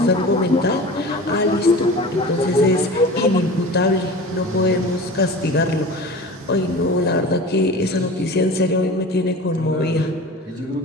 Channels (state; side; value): normal; both; correlation 0.36